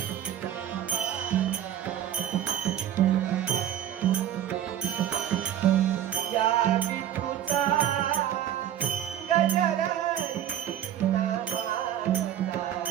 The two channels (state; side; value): quieter; left; 10.8 dB